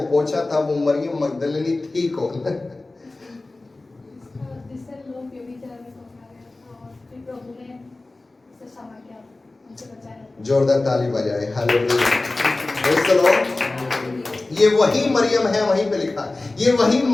पोंछा था, वो मरियम मगदलिनी थी कौन? जोरदार ताली बजाए। हालेलुया। Praise the Lord. ये वही मरियम है, वहीं पे लिखा, ये वही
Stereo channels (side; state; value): right; quieter; 3.1 dB